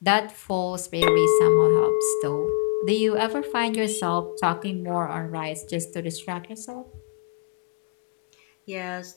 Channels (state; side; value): quieter; right; 27.8 dB